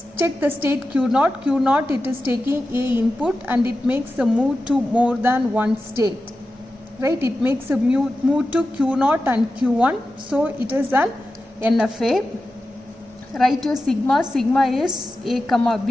Check the state Q0. Q0, it is taking A input and it makes a move to more than one state, right? It makes a move to Q0 and Q1. So it is an NFA. Write your sigma. Sigma is A comma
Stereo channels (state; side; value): normal; both; correlation 0.92